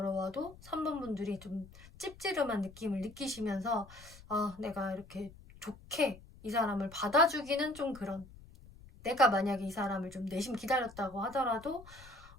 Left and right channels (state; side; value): noise; left; rumble, 20 dB below the sound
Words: 3번 분들이 좀 찝찝한 느낌을 느끼시면서 내가 이렇게 좋게 이 사람을 받아주기는 좀 그런, 내가 만약에 이 사람을 좀 내심 기다렸다고 하더라도